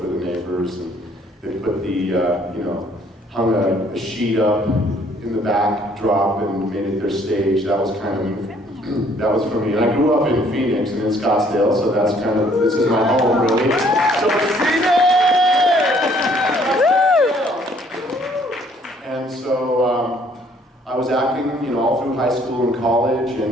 the neighbors, and they put the, hung a sheet up in the backdrop and made it their stage. That was kind of, that was for me. And I grew up in Phoenix and in Scottsdale, so that's kind of, this is my home, really. So Phoenix! And so I was acting, all through high school and college, and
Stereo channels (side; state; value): both; normal; correlation 0.62